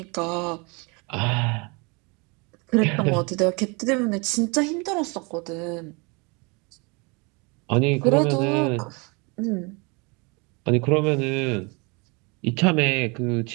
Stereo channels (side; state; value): left; quieter; 29.7 dB